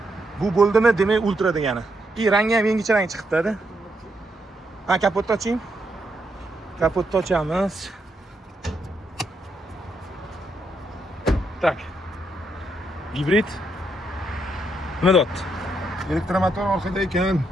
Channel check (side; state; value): both; normal; correlation 0.79